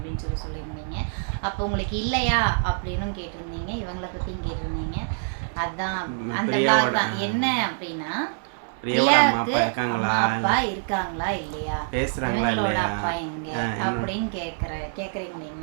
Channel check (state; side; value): silent; left; digital silence